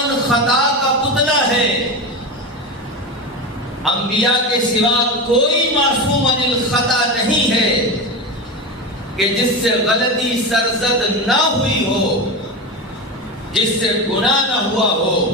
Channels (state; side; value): normal; both; correlation 0.21